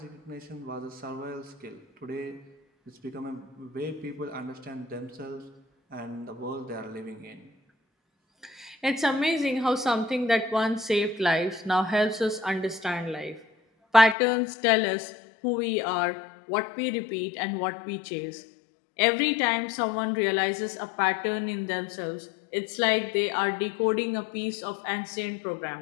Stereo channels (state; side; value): drops out; right; at 14.2 s